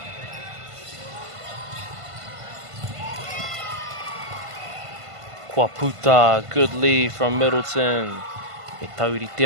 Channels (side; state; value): left; late; 1.5 ms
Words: Kuaputa, good lead from Middleton. E tauri te